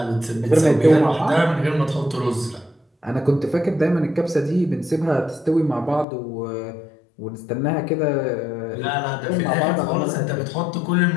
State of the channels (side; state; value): right; drops out; at 6.1 s